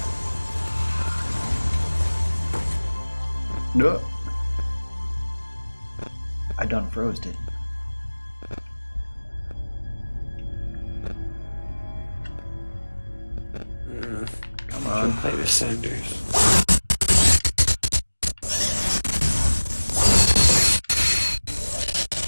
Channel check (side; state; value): both; inverted; correlation -1.00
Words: No. I done froze it. Come on. Play the Senders.